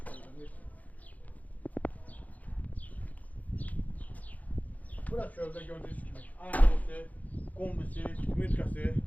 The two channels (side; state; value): right; late; 0.076 ms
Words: Burası çöldə gördüğünüz gibi, ayakkabısı, kombisi, mütkəsi.